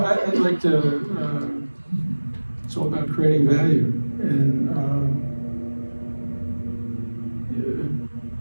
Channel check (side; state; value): both; inverted; correlation -1.00